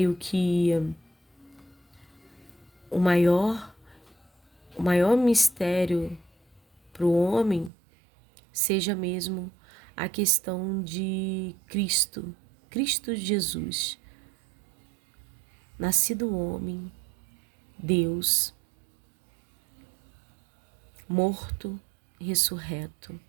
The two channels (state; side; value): drops out; left; at 7.7 s